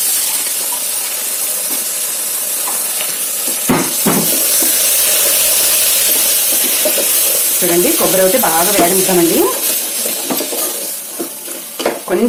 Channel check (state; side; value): identical; both; correlation 1.00